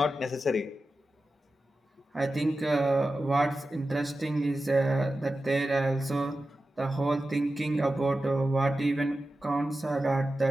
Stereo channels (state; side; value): normal; both; correlation 0.93